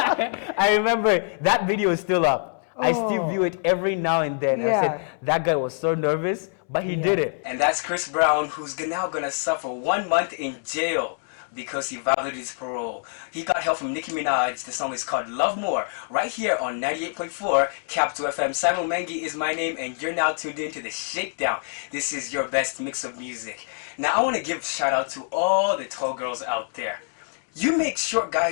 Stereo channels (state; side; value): silent; right; digital silence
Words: I remember that video is still up. I still view it every now and then. Yeah. I said, that guy was so nervous, but he Yeah. did it. And that's Chris Brown, who's now gonna suffer 1 month in jail because he violated his parole. He got help from Nicki Minaj. The song is called Love More, right here on 98.4 Capital FM. Simon Mengi is my name, and you're now tuned into the Shakedown. This is your best mix of music. Now, I want to give a shout out to all the tall girls out there. You make short